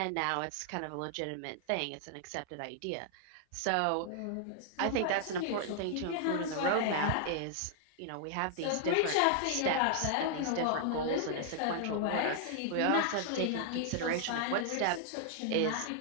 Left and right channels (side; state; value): both; different; correlation -0.01